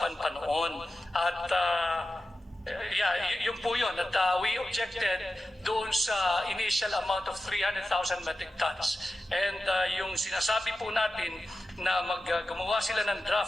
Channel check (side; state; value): both; normal; correlation 0.92